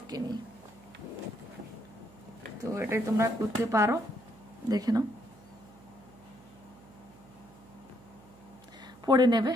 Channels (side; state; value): right; noise; hum, 23 dB below the sound